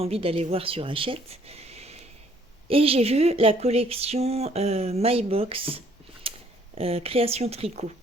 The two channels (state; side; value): normal; both; correlation 0.62